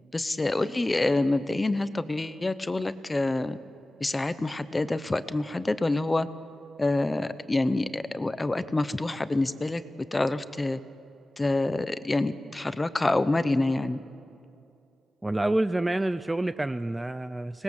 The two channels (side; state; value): both; normal; correlation 0.97